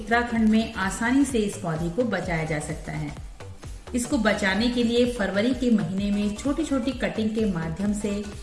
में आसानी से इस पौधे को बचाया जा सकता है। इसको बचाने के लिए फरवरी के महीने में छोटी छोटी कटिंग के माध्यम से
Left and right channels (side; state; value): both; identical; correlation 1.00